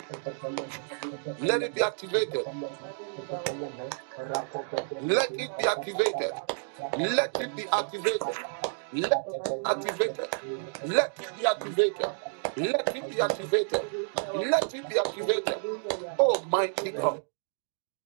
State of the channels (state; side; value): silent; left; digital silence